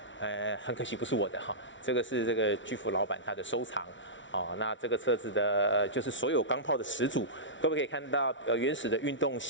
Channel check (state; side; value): late; right; 0.55 ms